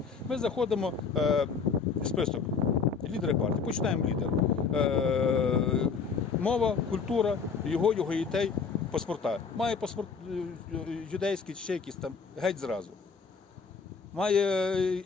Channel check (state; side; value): quieter; right; 5.5 dB